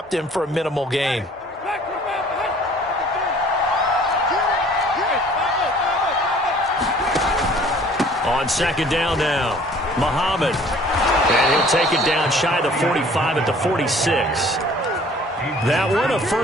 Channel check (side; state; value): both; normal; correlation 0.53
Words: him for a minimal gain. On 2nd down now, Muhammad. And he'll take it down shy of the 45 at the 46. That one a